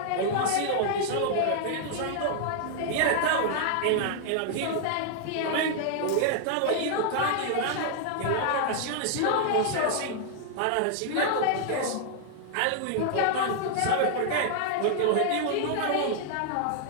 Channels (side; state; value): both; different; correlation -0.01